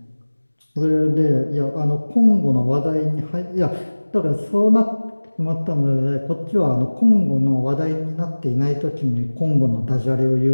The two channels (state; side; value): inverted; both; correlation -1.00